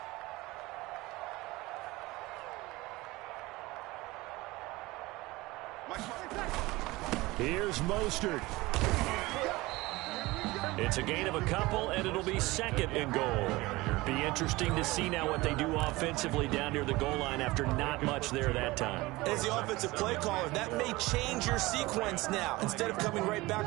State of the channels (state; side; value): quieter; left; 20.8 dB